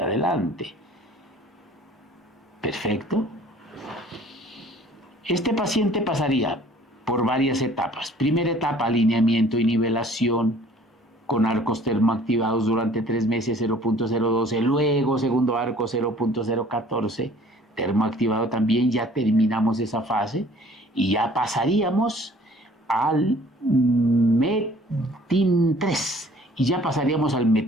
adelante. Perfecto. Este paciente pasaría por varias etapas. Primera etapa, alineamiento y nivelación con arcos termoactivados durante 3 meses 0.012. Luego, segundo arco 0.014, termoactivado también. Ya terminamos esa fase y ya pasaríamos al METIN 3. Y ya pasaríamos al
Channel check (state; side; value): normal; both; correlation 0.53